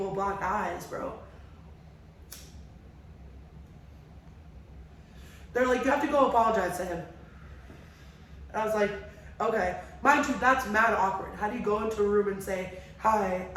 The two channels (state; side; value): identical; both; correlation 1.00